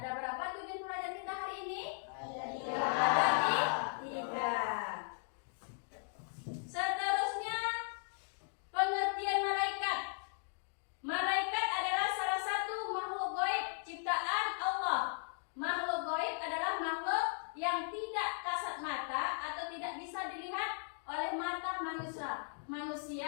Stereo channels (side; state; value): right; silent; digital silence